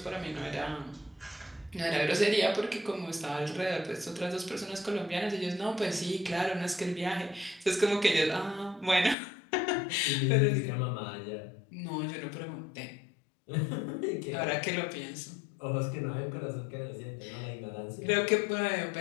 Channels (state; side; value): drops out; right; at 9.2 s